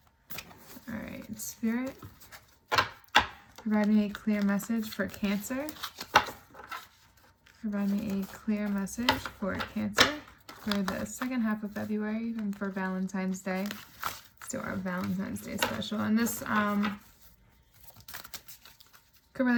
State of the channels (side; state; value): both; identical; correlation 1.00